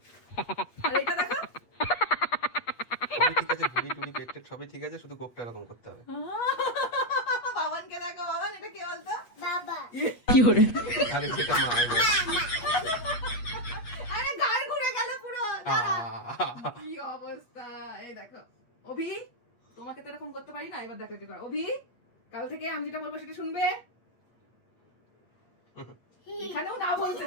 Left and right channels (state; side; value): late; right; 8.3 ms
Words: আর এটা দেখো, সবই ঠিক আছে, ভুড়ি টুড়ি পেট টেট সবই ঠিক আছে, শুধু গোপটা এরকম করতে হবে। বাবানকে দেখো। বাবান, এটা কে বলতো? বাবা। আরে সেটা মা। আরে গাল ঘুরে গেল পুরো। কি অবস্থা, এই দেখো। অভি, তোমাকে তো এরকম করতে পারি না, এবার দেখো কি করে। অভি, কাল থেকে আমি যেটা বলবো সেটা শুনবে। এখানেও না বলছে,